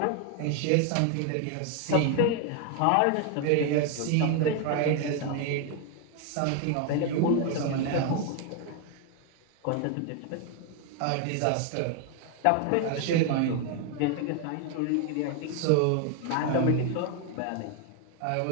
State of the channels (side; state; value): both; different; correlation 0.01